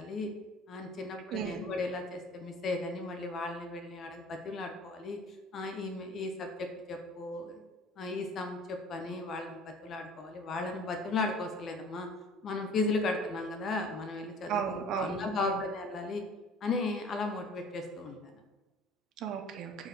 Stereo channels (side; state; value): both; normal; correlation 0.47